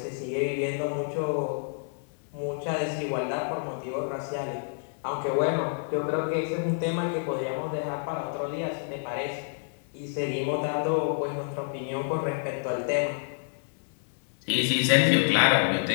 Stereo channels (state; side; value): silent; right; digital silence